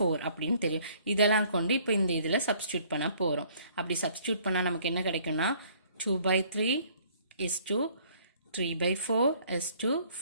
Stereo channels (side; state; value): both; inverted; correlation -0.59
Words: அப்படின்னு தெரியும். இதெல்லாம் கொண்டு இப்போ இந்த இதில் சப்ஸ்டியூட் பண்ண போகிறோம். அப்படி சப்ஸ்டியூட் பண்ணால் நமக்கு என்ன கிடைக்கும்னா 2/3 is to 3/4 is to